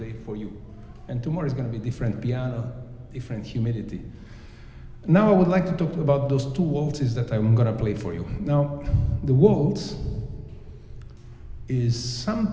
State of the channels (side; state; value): both; identical; correlation 1.00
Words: for you. And tomorrow is going to be different piano, different humidity. Now I would like to talk about those two waltzes that I'm going to play for you. Now, the waltz is